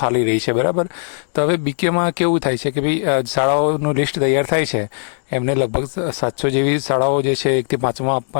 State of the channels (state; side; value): silent; right; digital silence